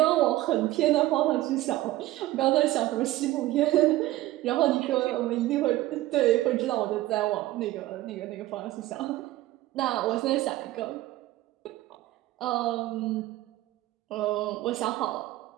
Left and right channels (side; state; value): left; quieter; 16.4 dB